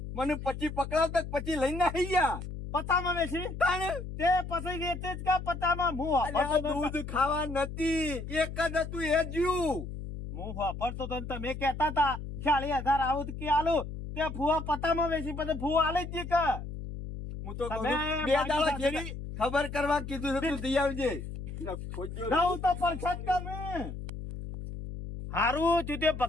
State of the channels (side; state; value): left; noise; hum, 8 dB below the sound